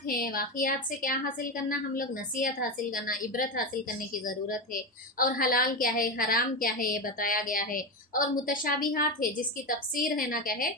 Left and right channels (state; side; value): normal; both; correlation 0.16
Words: हैं, वाक़ियात से क्या हासिल करना, हम लोग नसीहत हासिल करना, इबरत हासिल करने की ज़रूरत है। और हलाल क्या है, हराम क्या है, ये बताया गया है। और मुतशाबिहात है, जिसकी तफसीर है ना क्या है,